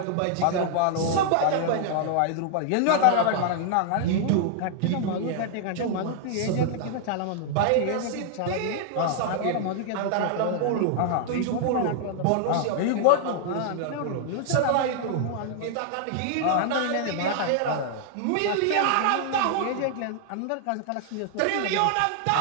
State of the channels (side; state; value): both; different; correlation 0.00